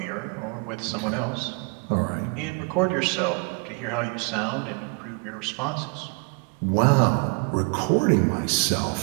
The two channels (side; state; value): left; quieter; 34.1 dB